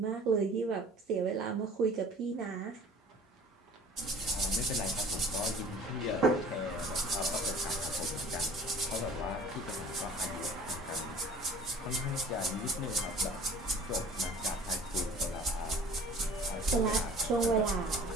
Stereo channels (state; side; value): normal; both; correlation 0.47